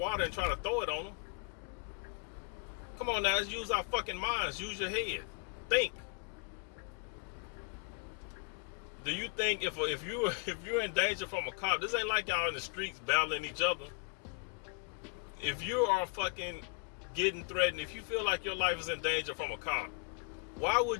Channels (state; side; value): quieter; right; 35.7 dB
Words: and try to throw it on them. Come on now, let's use our fucking minds. Use your head. Think. Do you think if you're in danger from a cop, this ain't like y'all in the streets battling each other. If you are fucking getting threatened, if you feel like your life is in danger from a cop, why